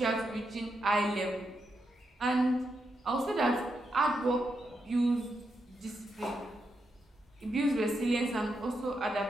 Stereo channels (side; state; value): both; normal; correlation 0.83